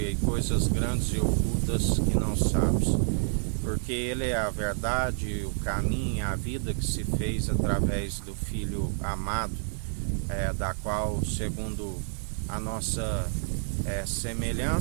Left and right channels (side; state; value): left; silent; digital silence